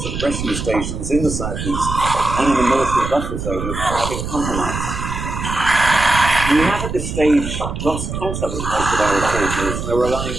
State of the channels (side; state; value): right; noise; rumble, 5 dB below the sound